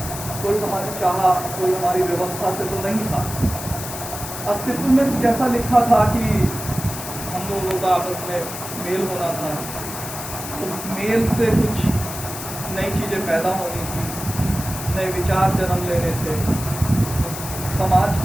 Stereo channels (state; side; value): noise; left; hiss, 9 dB below the sound